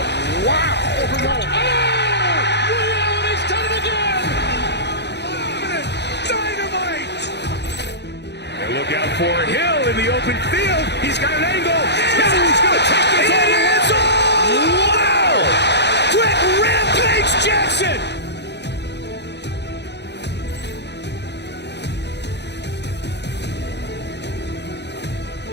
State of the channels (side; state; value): right; late; 0.50 ms